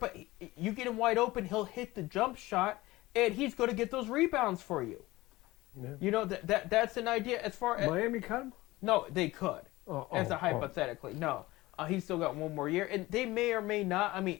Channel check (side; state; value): right; quieter; 19.3 dB